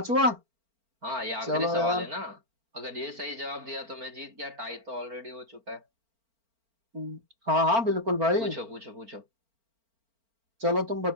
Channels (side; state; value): left; late; 4.4 ms